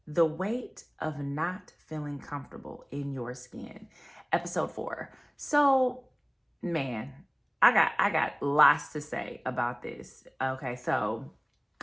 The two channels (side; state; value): both; identical; correlation 1.00